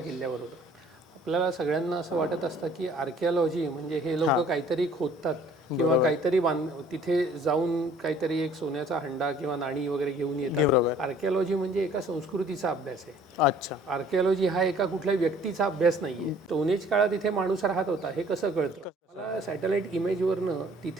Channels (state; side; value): normal; both; correlation 0.55